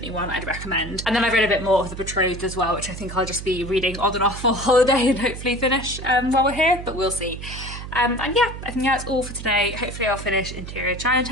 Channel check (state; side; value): noise; right; hum, 10 dB below the sound